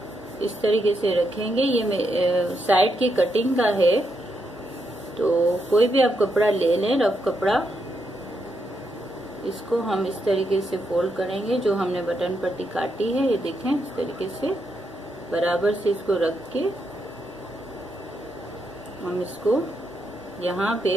इस तरीके से रखेंगे। ये साइड की कटिंग का है, तो कोई भी आप कपड़ा ले लें, रफ कपड़ा। इसको हम इस तरीके से फोल्ड करेंगे, जो हमने बटन पट्टी काटी है। ये देखें इस तरीके से बराबर से इसको रख के हम इसको यहाँ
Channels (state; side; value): normal; both; correlation 0.81